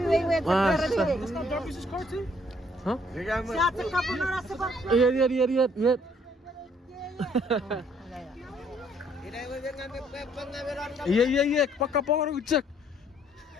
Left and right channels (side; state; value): both; normal; correlation 0.65